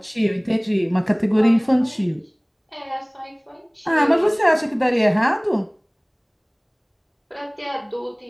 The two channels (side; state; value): both; identical; correlation 1.00